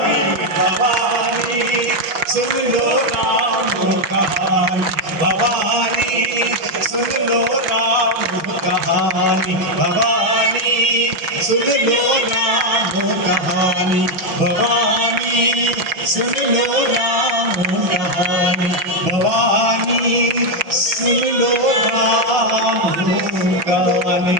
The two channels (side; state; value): left; late; 6.1 ms